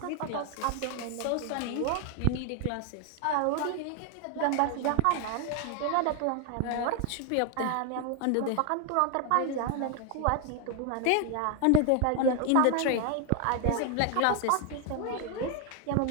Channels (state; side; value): different; both; correlation 0.01